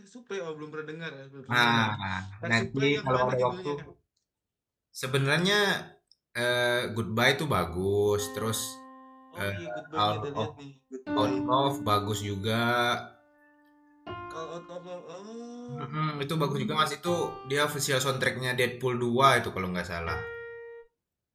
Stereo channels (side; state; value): both; identical; correlation 1.00